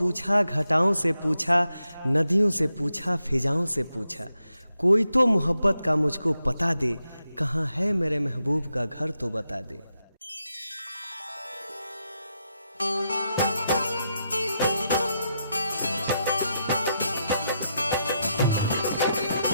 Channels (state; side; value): inverted; both; correlation -0.84